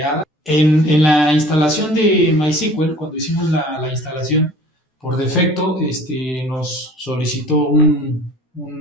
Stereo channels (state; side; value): normal; both; correlation 0.47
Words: En la instalación de MySQL, cuando hicimos la instalación, por defecto nos solicitó